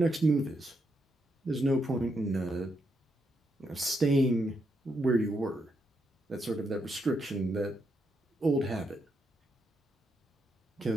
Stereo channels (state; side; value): normal; both; correlation 0.80